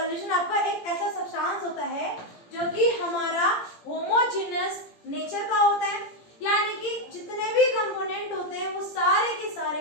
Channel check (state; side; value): late; right; 17 ms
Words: आपका एक ऐसा सब्सटेंस होता है जो कि हमारा होमोजेनस नेचर का होता है, यानी कि जितने भी कंपोनेंट होते हैं वो सारे के